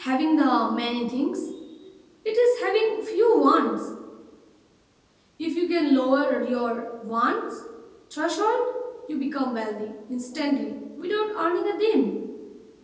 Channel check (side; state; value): both; identical; correlation 1.00